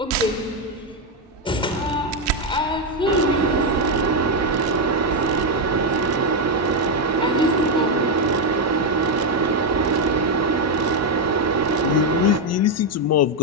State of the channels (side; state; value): both; normal; correlation 0.03